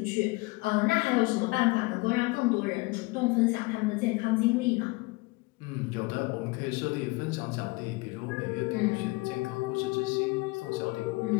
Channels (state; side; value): quieter; right; 24.3 dB